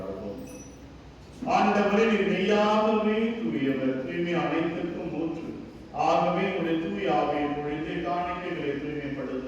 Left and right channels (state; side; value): identical; both; correlation 1.00